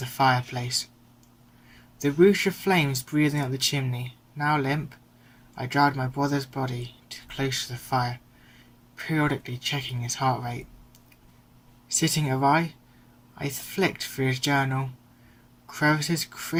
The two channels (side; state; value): both; identical; correlation 1.00